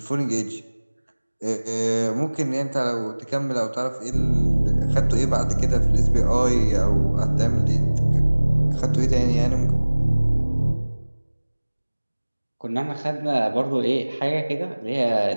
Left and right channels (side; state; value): both; inverted; correlation -1.00